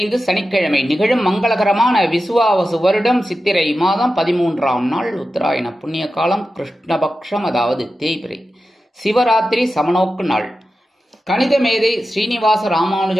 சனிக்கிழமை நிகழும் மங்களகரமான விசுவாவசு வருடம் சித்திரை மாதம் 13ஆம் நாள், உத்தராயண புண்ணிய காலம், கிருஷ்ணபக்ஷம், அதாவது தேய்பிறை, சிவராத்திரி சமநோக்கு நாள். கணித மேதை ஸ்ரீனிவாச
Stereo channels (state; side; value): normal; both; correlation 0.92